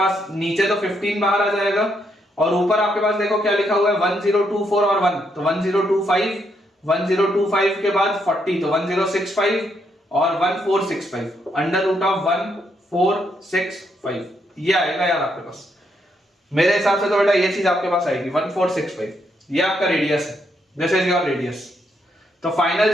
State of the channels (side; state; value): both; normal; correlation 0.76